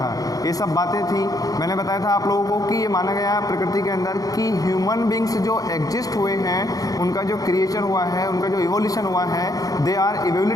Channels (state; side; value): late; right; 0.17 ms